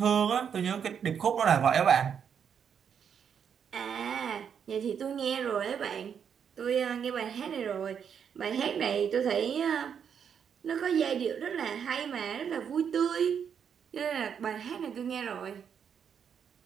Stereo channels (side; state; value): left; quieter; 7.6 dB